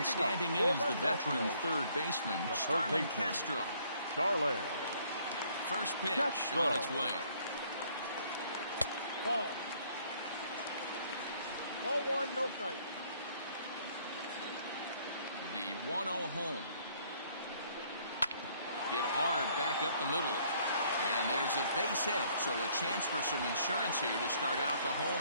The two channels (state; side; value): inverted; both; correlation -0.63